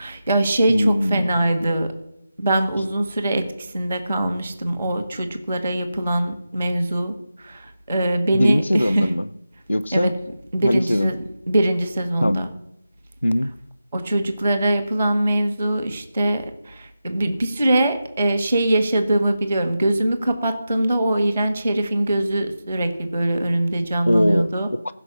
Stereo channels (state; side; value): inverted; both; correlation -0.91